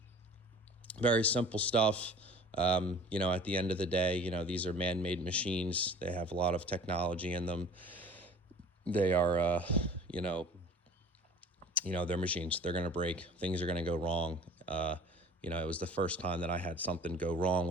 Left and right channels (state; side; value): normal; both; correlation 0.45